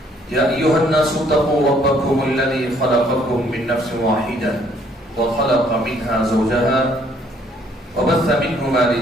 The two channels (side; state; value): both; normal; correlation 0.64